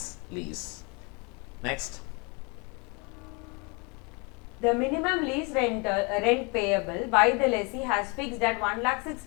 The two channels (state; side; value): quieter; right; 31.0 dB